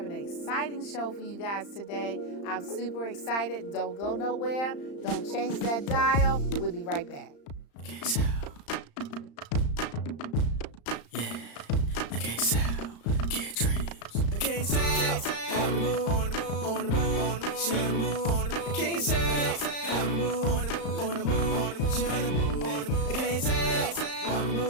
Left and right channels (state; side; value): late; right; 35 ms